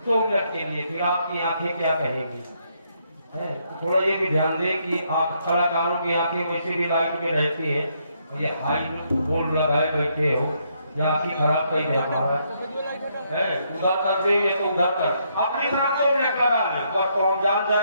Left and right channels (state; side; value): inverted; both; correlation -0.74